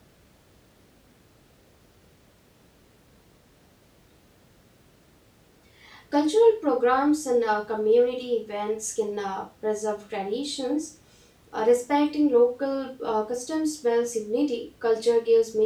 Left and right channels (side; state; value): both; identical; correlation 1.00